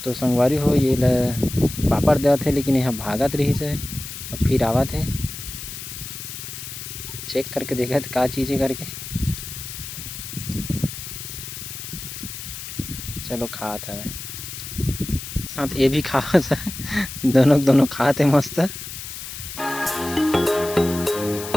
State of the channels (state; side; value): noise; left; hiss, 9 dB below the sound